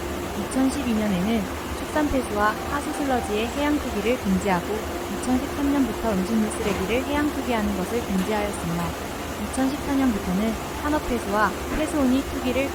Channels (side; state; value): both; identical; correlation 1.00